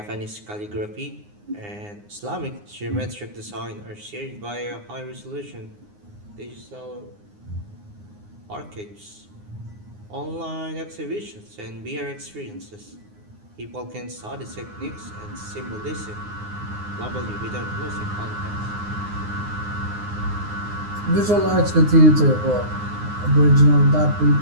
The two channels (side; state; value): left; late; 9.7 ms